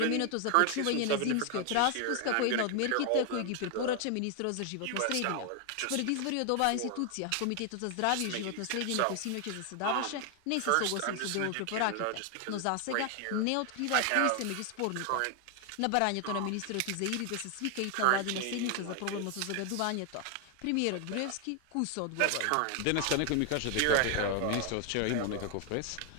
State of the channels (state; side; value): different; both; correlation 0.01